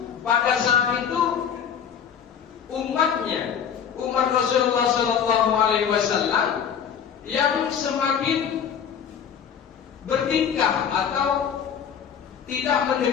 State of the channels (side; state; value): right; quieter; 7.9 dB